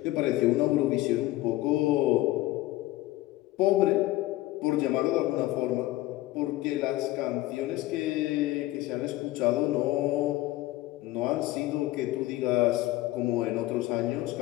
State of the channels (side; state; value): right; quieter; 17.1 dB